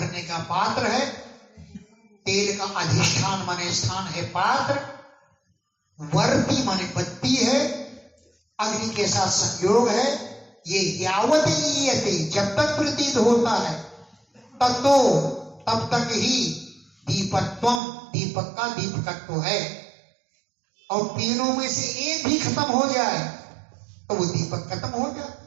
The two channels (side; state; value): left; drops out; at 17.8 s